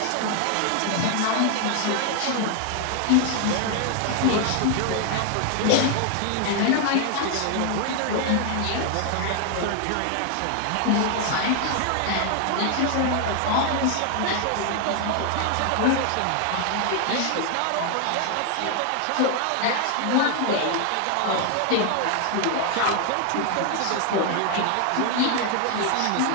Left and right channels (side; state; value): both; different; correlation 0.00